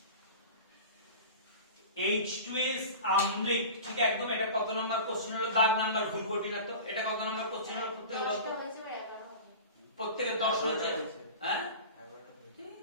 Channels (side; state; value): both; inverted; correlation -0.34